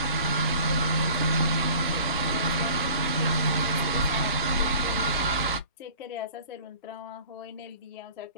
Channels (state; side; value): inverted; both; correlation -0.47